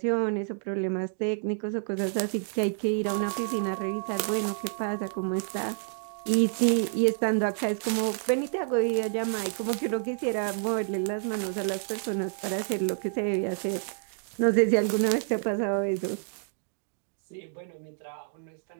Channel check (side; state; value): left; silent; 59 dB below the other